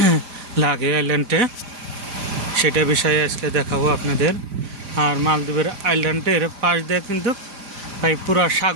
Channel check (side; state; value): left; late; 5.0 ms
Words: লাগে আইল্যান্ডে, সেটা বিষয়ে আজকে দেখাবো আপনাদের। আর মালদ্বীপের আইল্যান্ডের পাশ দিয়ে কিন্তু পুরা